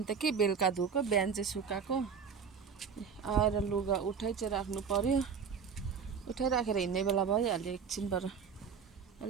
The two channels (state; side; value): quieter; left; 6.3 dB